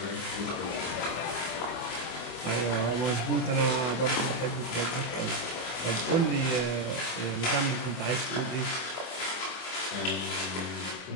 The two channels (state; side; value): late; right; 24 ms